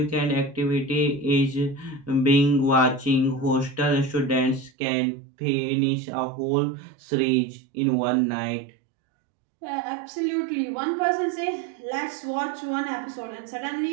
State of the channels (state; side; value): drops out; left; at 4.7 s